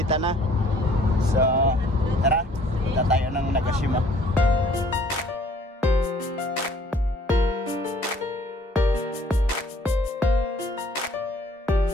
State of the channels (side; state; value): both; normal; correlation 0.57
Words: na. So, tara, punta tayo ng Nagashima.